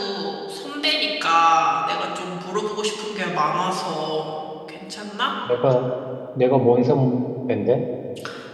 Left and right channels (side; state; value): both; identical; correlation 1.00